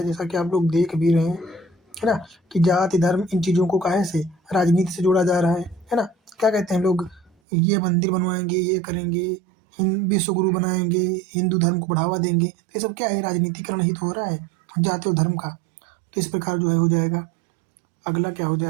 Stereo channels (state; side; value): drops out; left; at 7.3 s